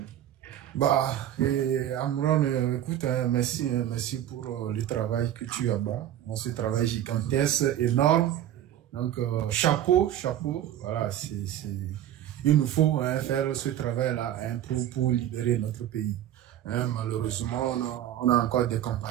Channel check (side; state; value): left; quieter; 11.7 dB